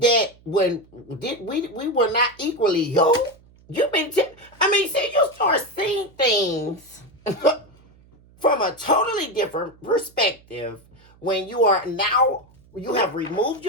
when we were not equally yoked? You've been see, you start seeing things from a totally different perspective when you have removed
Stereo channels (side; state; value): right; noise; hum, 28 dB below the sound